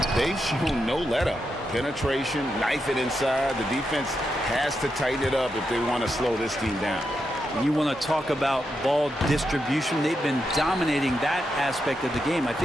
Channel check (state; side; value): normal; both; correlation 0.85